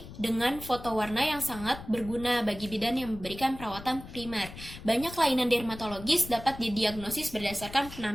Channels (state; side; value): noise; left; rumble, 14 dB below the sound